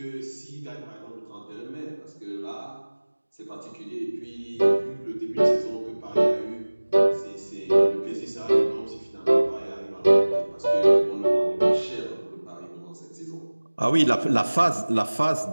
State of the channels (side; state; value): both; inverted; correlation -1.00